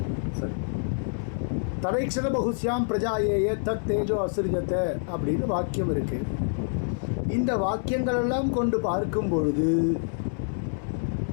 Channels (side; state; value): right; silent; 60 dB below the other